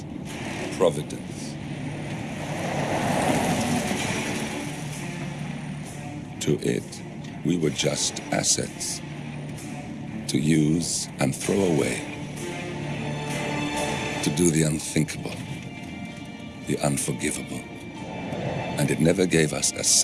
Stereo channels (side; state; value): both; identical; correlation 1.00